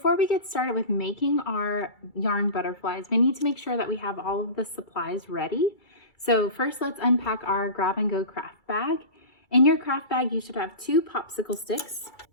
we get started with making our yarn butterflies, we need to make sure that we have all of the supplies ready. So first let's unpack our grab and go craft bag. In your craft bag you should have 2 popsicle sticks,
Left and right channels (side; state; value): right; late; 2.3 ms